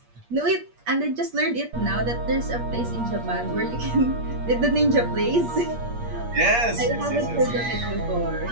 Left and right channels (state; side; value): late; left; 8.5 ms